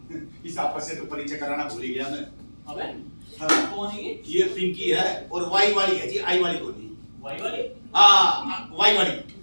इस आपस से तो परिचय कराना भूल ही गया मैं। अबे हाँ। कौन है ये पिंकी है और वाई वाली है जी, आई वाली को नहीं। वाई वाली? हाँ, वाई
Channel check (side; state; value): both; inverted; correlation -1.00